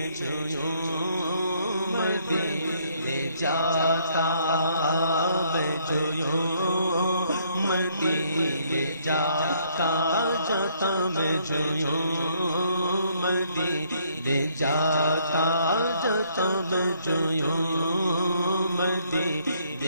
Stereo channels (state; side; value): inverted; both; correlation -0.67